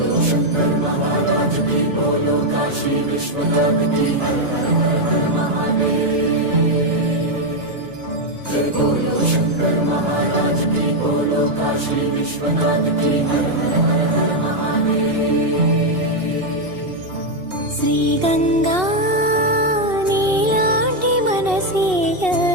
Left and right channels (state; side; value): late; left; 2.7 ms